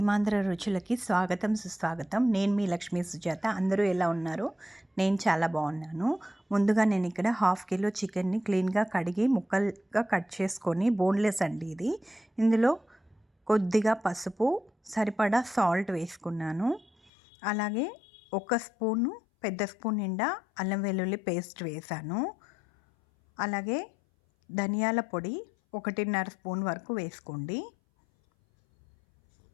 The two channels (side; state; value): right; drops out; at 17.1 s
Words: రుచులకి స్వాగతం, సుస్వాగతం. నేను మీ లక్ష్మీ సుజాత. అందరూ ఎలా ఉన్నారు? నేను చాలా బాగున్నాను. ముందుగా నేను ఇక్కడ 1/2 కిలో చికెన్ని క్లీన్గా కడిగి ముక్కలుగా కట్ చేసుకొని, బోన్లెస్ అండి ఇది. ఇందులో కొద్దిగా పసుపు, సరిపడా సాల్ట్ వేసుకున్నాను. అలాగే ఒక స్పూను, పెద్ద స్పూన్ నిండా అల్లం వెల్లుల్లి పేస్ట్ వేసాను. అలాగే ధనియాల పొడి 1.5 స్పూన్ వరకు వేసుకోండి.